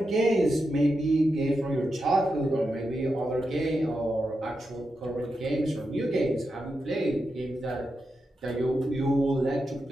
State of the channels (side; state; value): both; normal; correlation 0.87